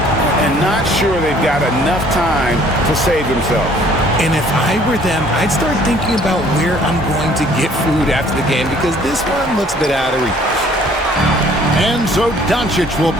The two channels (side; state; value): both; normal; correlation 0.57